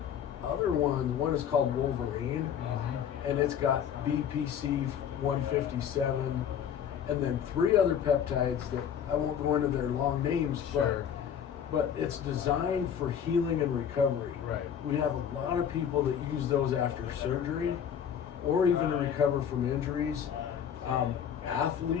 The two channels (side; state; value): right; quieter; 8.5 dB